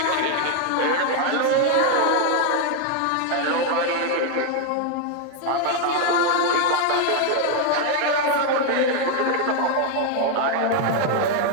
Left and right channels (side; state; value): both; different; correlation 0.01